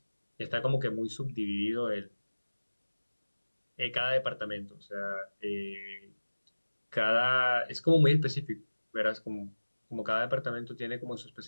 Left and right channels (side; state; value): both; inverted; correlation -1.00